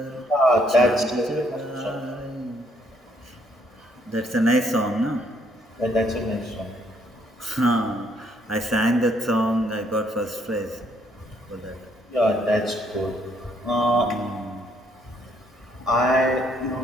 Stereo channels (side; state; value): both; normal; correlation 0.69